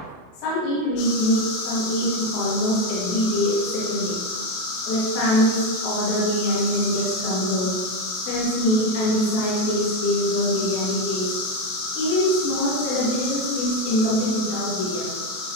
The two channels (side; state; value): right; late; 28 ms